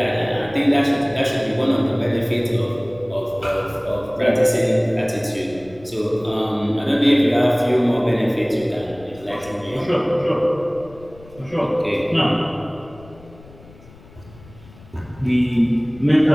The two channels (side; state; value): left; noise; rumble, 22 dB below the sound